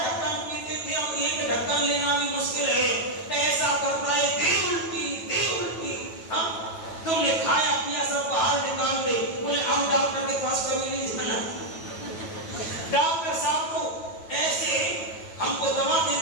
पीते थे अब 1 ढक्कन लेना भी मुश्किल है, ऐसा करता है दे उल्टी। हाँ तुमने खाया पिया सब बाहर निकाल दे, बोले अब डॉक्टर के पास कभी नहीं जाना। डॉक्टर साहब तो ऐसे हमको दवा दे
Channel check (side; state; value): right; late; 9.2 ms